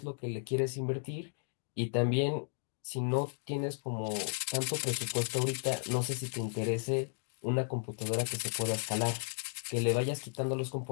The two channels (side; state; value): right; silent; digital silence